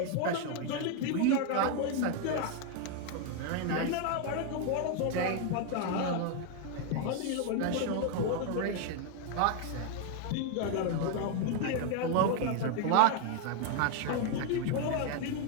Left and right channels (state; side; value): different; both; correlation 0.01